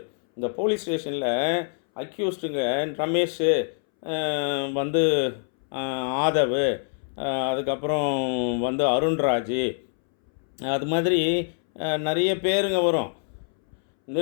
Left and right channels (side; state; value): right; silent; 62 dB below the other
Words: இந்த போலீஸ் ஸ்டேஷனில் அக்யூஸ்டுங்க ரமேஷ் வந்து ஆதவ், அதுக்கப்புறம் வந்து அருண்ராஜ், அது மாதிரி நிறைய பேருங்க வரும்,